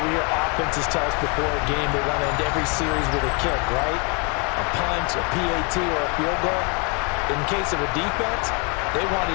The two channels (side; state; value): right; quieter; 33.6 dB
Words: we hear offenses tell us before a game they want to end every series with a kick, right? A punt, a PAT, or a field goal. In case of a defense, they want to